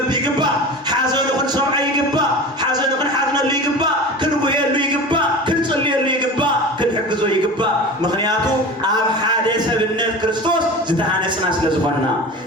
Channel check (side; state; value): both; normal; correlation 0.33